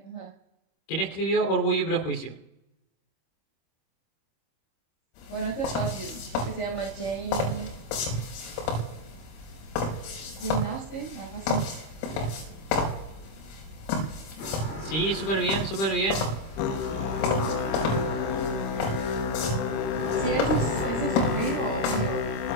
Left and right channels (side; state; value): right; late; 26 ms